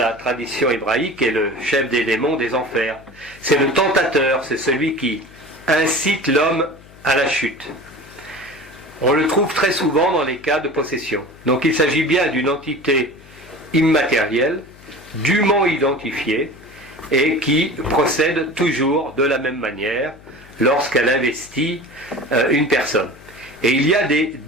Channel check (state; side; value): noise; left; hum, 23 dB below the sound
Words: tradition hébraïque est le chef des démons des enfers. C'est le tentateur, c'est celui qui incite l'homme à la chute. On le trouve très souvent dans les cas de possession. Donc il s'agit bien d'une entité immatérielle, dûment identifiée, et qui procède toujours de la même manière lorsqu'elle investit une personne. Et il y a des